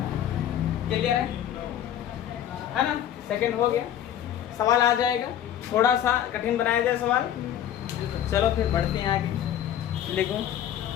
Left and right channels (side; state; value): right; quieter; 10.7 dB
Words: क्लियर है ना, सेकंड हो गया। सवाल आ जाएगा, थोड़ा सा कठिन बनाया जाए सवाल। चलो फिर बढ़ते हैं आगे, लिखो।